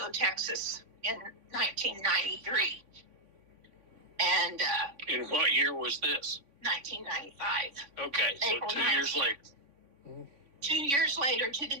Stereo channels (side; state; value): left; late; 3.6 ms